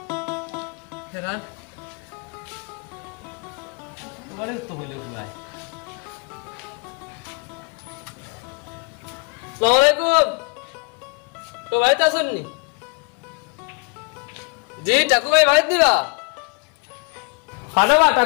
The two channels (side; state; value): right; quieter; 34.2 dB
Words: আসসালামুআলাইকুম তো ভাইতে আসুন নি জি টাকু ভাই ভাই দিবা খানাবা